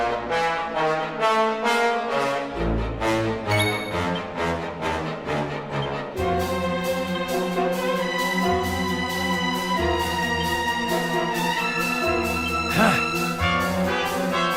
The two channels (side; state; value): both; identical; correlation 1.00